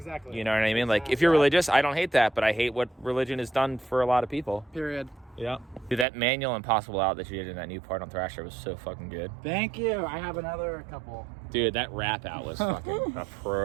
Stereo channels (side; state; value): left; drops out; at 6.1 s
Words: You know what I mean? Like if you're religious, I don't hate that, but I hate what religion has done for a lot of people. Period. Yeah. Dude, that manual Impossible out that you did in that new part on Thrasher was so fucking good. Thank you. I have another couple. Dude, that rap out was fucking